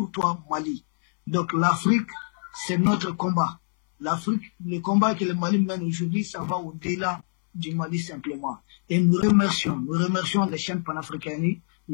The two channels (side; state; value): right; silent; 62 dB below the other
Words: toi, Mali. Donc l'Afrique, c'est notre combat. L'Afrique, le combat que le Mali mène aujourd'hui, ça va au-delà du Mali simplement. Et nous remercions les chaînes panafricaines,